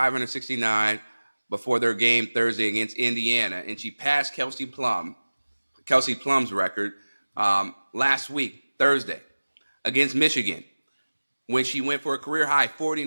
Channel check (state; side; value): inverted; both; correlation -1.00